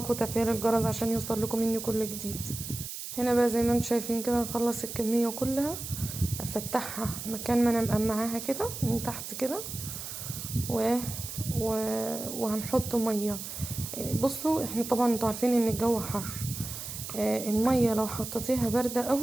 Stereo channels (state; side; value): noise; right; hiss, 8 dB below the sound